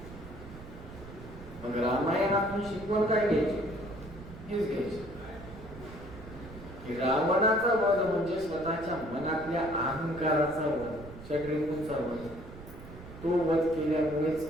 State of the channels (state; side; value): noise; right; rumble, 15 dB below the sound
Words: मग रामायणातून शिकवण काय घ्यायची? हेच घ्यायची की रावणाचा वध म्हणजे स्वतःच्या मनातल्या अहंकाराचा वध, षड्रिपूंचा वध. तो वध केल्यामुळेच